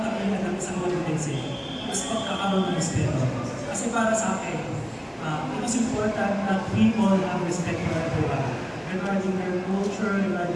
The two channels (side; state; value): both; identical; correlation 1.00